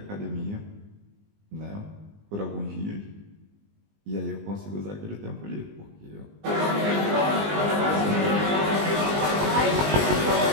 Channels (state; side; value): late; left; 20 ms